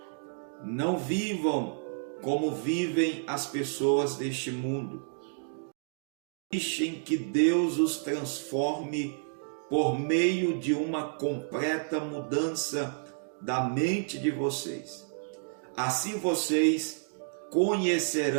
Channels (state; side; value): silent; left; digital silence